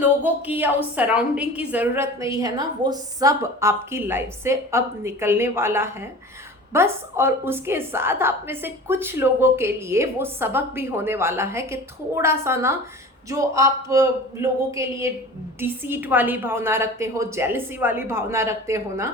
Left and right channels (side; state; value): both; normal; correlation 0.38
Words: की या उस सराउंडिंग की ज़रूरत नहीं है ना, वो सब आपकी लाइफ से अब निकलने वाला है बस। और उसके साथ आप में से कुछ लोगों के लिए वो सबक भी होने वाला है कि थोड़ा सा ना, जो आप लोगों के लिए डिसीट वाली भावना रखते हो, जेलसी वाली भावना रखते हो ना,